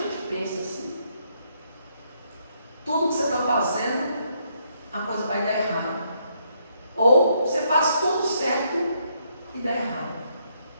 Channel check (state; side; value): inverted; both; correlation -0.74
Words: pensa assim: tudo que você está fazendo, a coisa vai dar errado. Ou você faz tudo certo e dá errado.